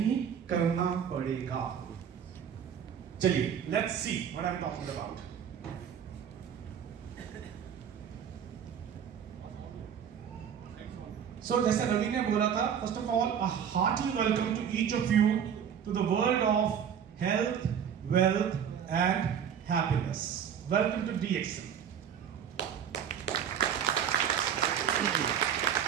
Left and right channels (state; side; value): quieter; left; 8.3 dB